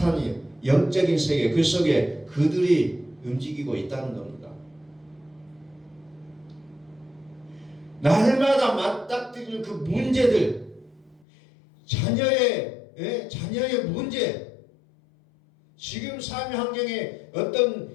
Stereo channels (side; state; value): right; drops out; at 11.2 s